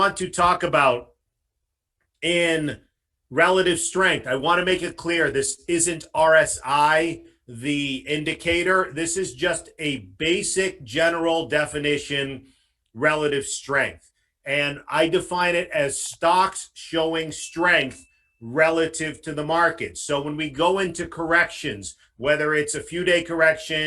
to talk about in relative strength, I want to make it clear this isn't RSI, the indicator. This is just a basic general definition, relative strength. And I define it as stocks showing strength relative to the market. So when we go into corrections, whether it's a few-day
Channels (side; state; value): both; identical; correlation 1.00